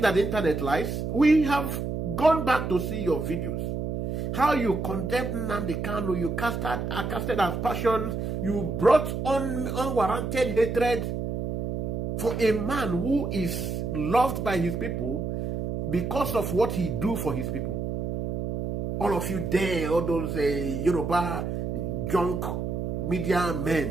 that the internet lies? We have gone back to see your videos. How you condemned Nnamdi Kanu, you casted as passions, you brought on unwarranted hatred for a man who is loved by his people because of what he do for his people. All of you there, all those Yoruba junk media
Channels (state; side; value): noise; right; hum, 3 dB below the sound